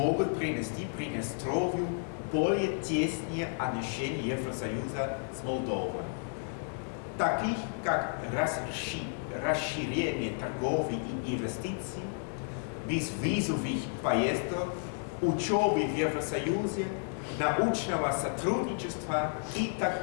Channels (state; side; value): silent; right; 56 dB below the other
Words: принести Приднестровью более тесные отношения Евросоюза с Молдовой, таких как расширение торговли и инвестиций, безвизовых поездок, учебы в Евросоюзе, научного сотрудничества и